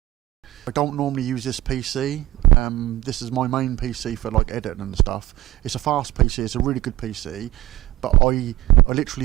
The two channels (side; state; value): left; quieter; 16.5 dB